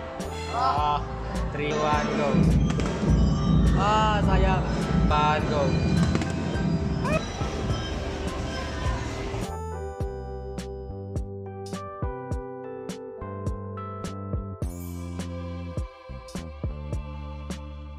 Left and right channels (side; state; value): both; identical; correlation 1.00